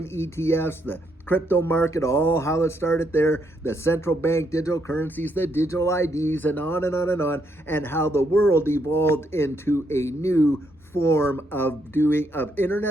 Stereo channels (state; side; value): normal; both; correlation 0.75